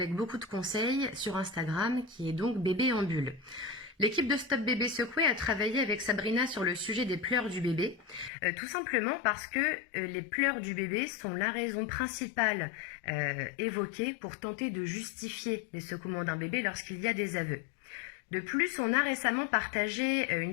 beaucoup de conseils sur Instagram, qui est donc Bébé en bulle. L'équipe de Stop Bébé Secoué a travaillé avec Sabrina sur le sujet des pleurs du bébé, tout simplement parce que les pleurs du bébé sont la raison principale évoquée pour tenter de justifier les secouements d'un bébé lorsqu'il y a des aveux. De plus, on a récemment partagé une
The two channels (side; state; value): right; drops out; at 8.3 s